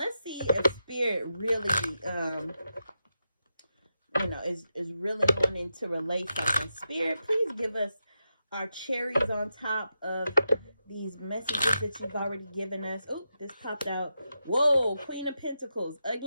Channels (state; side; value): inverted; both; correlation -0.88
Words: see if Spirit really, you know, is really wanting to relate something. Spirit, please give us our cherries on top of these messages that you've already given us. Oh, this popped out. Whoa, Queen of Pentacles.